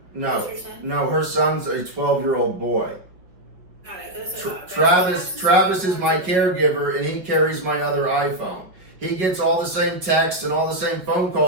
No. Is her son? No, her son's a 12-year-old boy. Got it. That's okay. Travis is my caregiver, and he carries my other iPhone. He gets all the same texts and all the same phone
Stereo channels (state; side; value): late; left; 5.3 ms